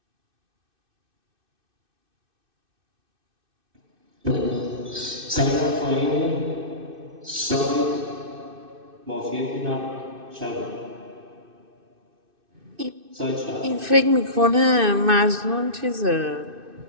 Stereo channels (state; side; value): late; left; 2.6 ms